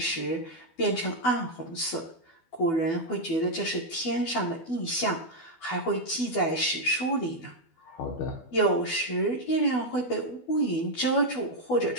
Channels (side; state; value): right; late; 12 ms